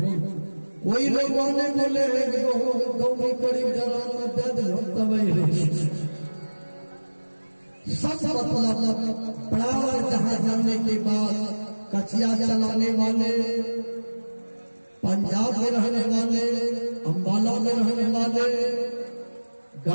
कोई लोग वाले बोले हैं कि गाँव में करीब सब मतलब बराबर जहाँ जाने के बाद कचिया चलाने वाले, पंजाब में रहने वाले, अम्बाला में रहने वाले,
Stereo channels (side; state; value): both; inverted; correlation -1.00